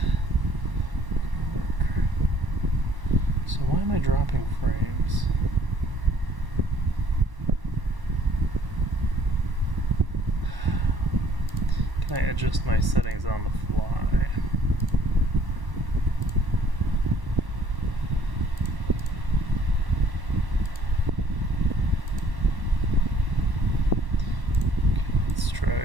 So why am I dropping frames? Can I adjust my settings on the fly? Okay, let's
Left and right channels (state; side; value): late; left; 1.0 ms